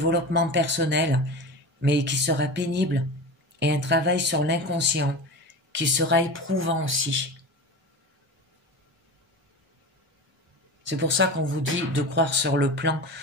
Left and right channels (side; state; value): both; normal; correlation 0.28